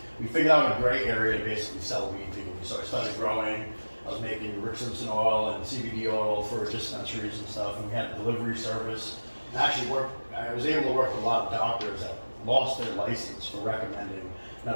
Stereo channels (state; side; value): inverted; both; correlation -1.00